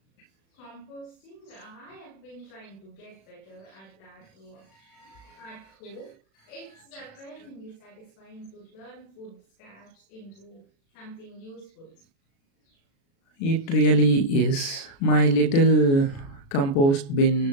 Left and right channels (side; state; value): right; late; 36 ms